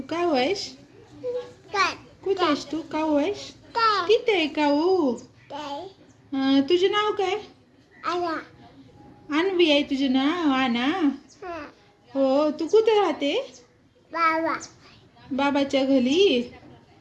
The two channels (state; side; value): identical; both; correlation 1.00